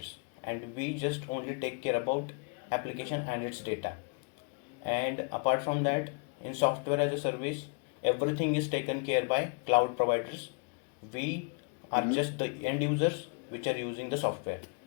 and we just only take care about application and its data. And apart from that, in software as a service, everything is taken care by cloud providers. We are just the end users which are using the software.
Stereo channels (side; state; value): right; quieter; 35.4 dB